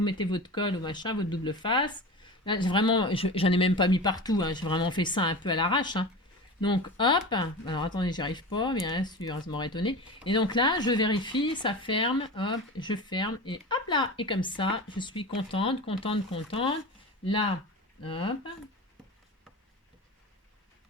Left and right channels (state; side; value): normal; both; correlation 0.30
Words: mettez votre colle ou machin, votre double face. Là, vraiment, j'en ai même pas mis partout. Hein. J'ai vraiment fait ça un peu à l'arrache. Hein. Donc, hop. Alors, attendez, j'y arrive pas, bien sûr, ça m'aurait étonné. Et donc là, je vérifie, ça ferme. Hop, je ferme. Et hop là. Et comme ça, je suis contente, contente, contente. Là, hop.